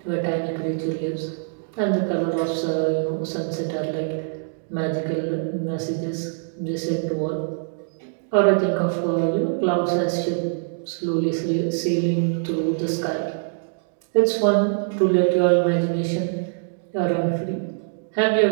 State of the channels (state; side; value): silent; left; digital silence